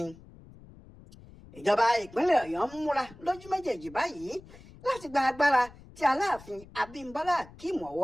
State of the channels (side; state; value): left; noise; rumble, 21 dB below the sound